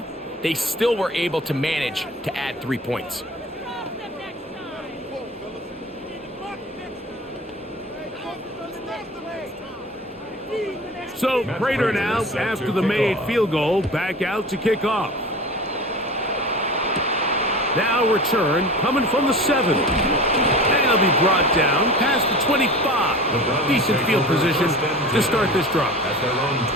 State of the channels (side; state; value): both; normal; correlation 0.36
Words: they still were able to manage to add 3 points. So Prater now, after the made field goal, back out to kick off. Now return coming from the 7. And he'll be brought down past the 25. Decent field position to start this drive.